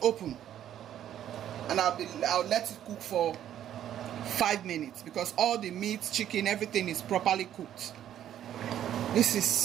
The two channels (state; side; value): quieter; left; 10.9 dB